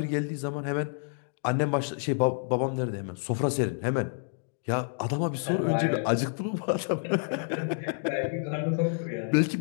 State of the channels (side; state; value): right; silent; digital silence